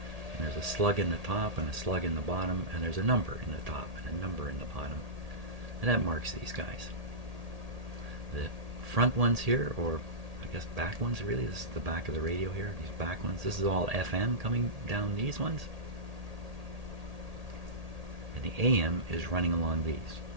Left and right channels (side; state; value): left; late; 1.8 ms